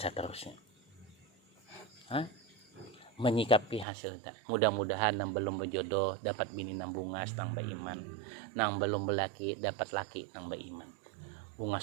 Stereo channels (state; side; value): drops out; left; at 3.9 s